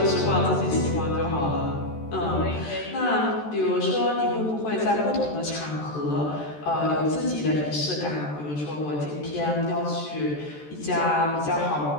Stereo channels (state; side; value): late; right; 14 ms